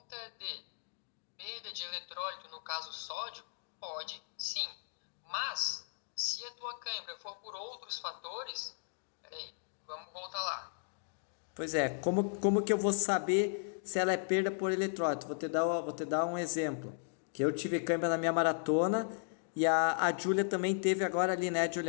de perda de eletrólito, no caso sódio, pode sim. Mas, se a tua cãibra for por outros fatores, peraí, vamos voltar lá. Pois é, como que eu vou saber se ela é perda por eletrólito? Vou te dar um exemplo. Que eu tive cãibra na minha maratona e a Júlia também teve agora ali, né,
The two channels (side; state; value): right; silent; digital silence